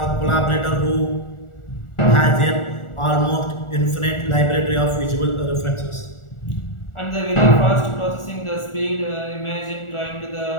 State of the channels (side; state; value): right; late; 1.4 ms